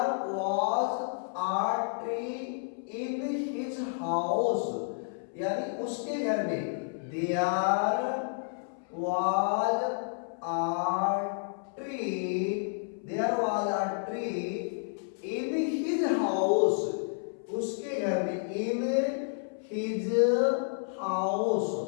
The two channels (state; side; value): silent; right; 57 dB below the other